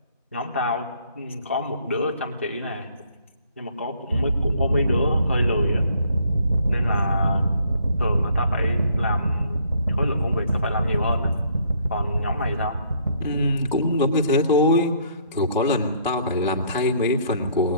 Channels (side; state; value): both; inverted; correlation -0.64